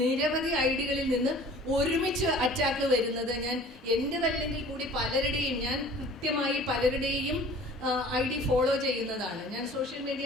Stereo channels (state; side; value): normal; both; correlation 0.47